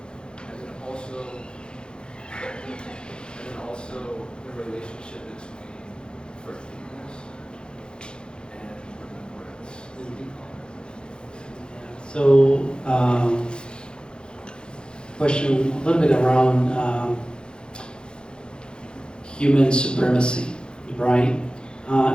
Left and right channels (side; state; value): right; late; 0.049 ms